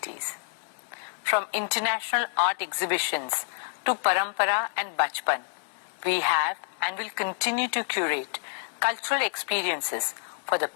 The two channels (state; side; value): silent; right; 59 dB below the other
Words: From international art exhibitions to Parampara and Bachpan, we have and will continue to curate cultural experiences for the